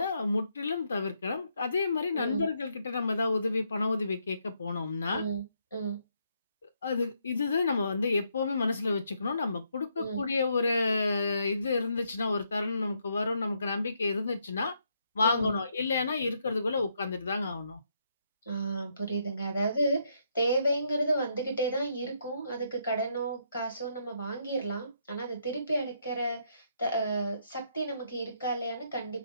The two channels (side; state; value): both; inverted; correlation -0.75